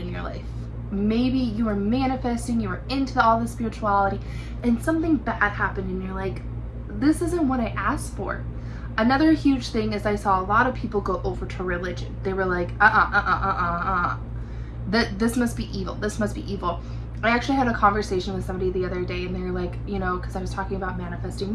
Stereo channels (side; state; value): both; identical; correlation 1.00